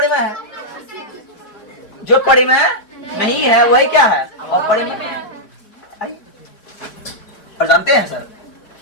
है, जो परिमेय नहीं है वही क्या है? अपरिमेय। और जानते हैं सर,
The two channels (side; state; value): right; late; 4.5 ms